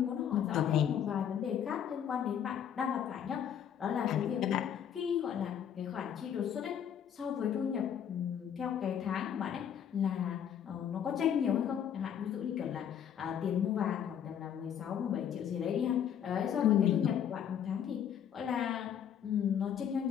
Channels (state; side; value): quieter; right; 8.9 dB